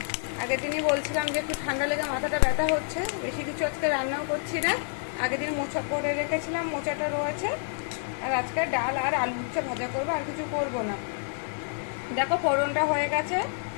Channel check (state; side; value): silent; right; digital silence